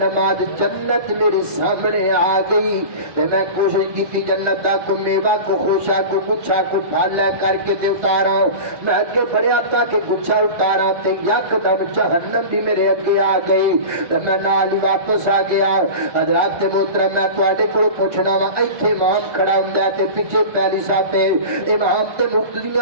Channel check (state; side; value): late; left; 1.2 ms